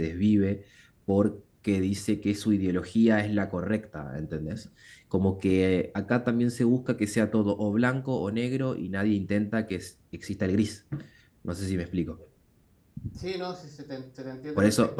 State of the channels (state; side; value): identical; both; correlation 1.00